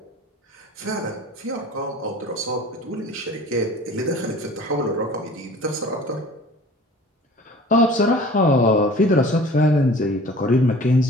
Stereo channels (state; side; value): normal; both; correlation 0.45